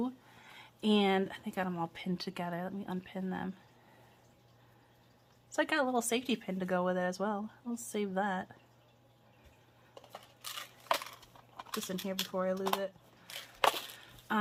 And I think I got them all pinned together. Let me unpin them. So I got a little safety pin to go with it as well. I'll save that. Just in here before I lose it.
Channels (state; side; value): identical; both; correlation 1.00